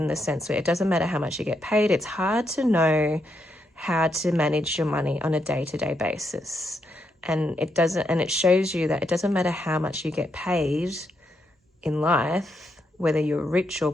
the sense where it doesn't matter how much you get paid. It's hard to know how to manage your money on a day-to-day basis. And it shows you that it doesn't matter how much you get paid in life, whether you're rich or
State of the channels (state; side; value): normal; both; correlation 0.80